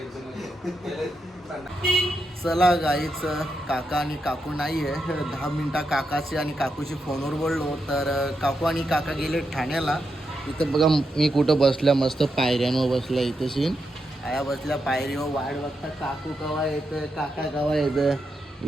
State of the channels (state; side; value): normal; both; correlation 0.84